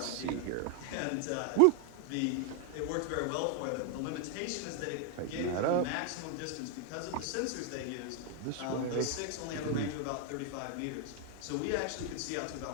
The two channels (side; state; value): both; different; correlation 0.00